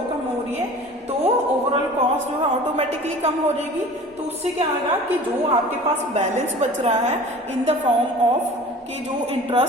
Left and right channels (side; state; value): both; normal; correlation 0.42